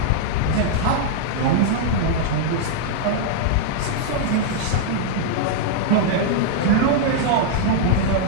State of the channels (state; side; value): different; both; correlation -0.01